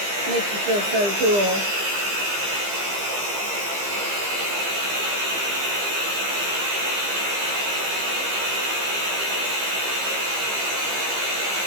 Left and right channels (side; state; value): left; late; 15 ms